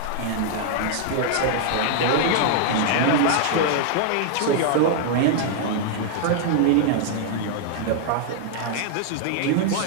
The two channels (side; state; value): both; different; correlation 0.00